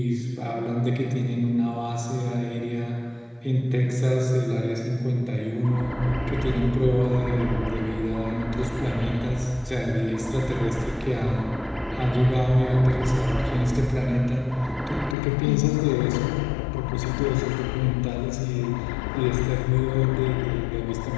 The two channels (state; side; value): drops out; right; at 15.2 s